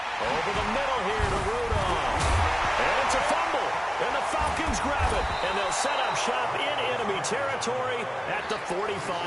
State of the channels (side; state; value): both; identical; correlation 1.00